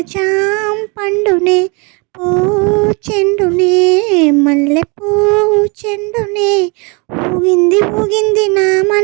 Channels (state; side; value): quieter; left; 30.8 dB